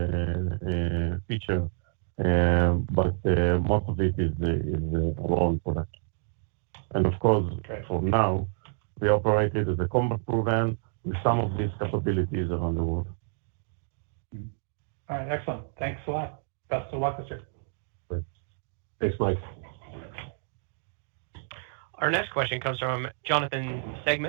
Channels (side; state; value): left; silent; 59 dB below the other